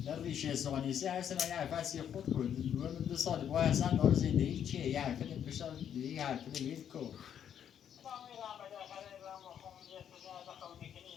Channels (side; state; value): right; quieter; 9.1 dB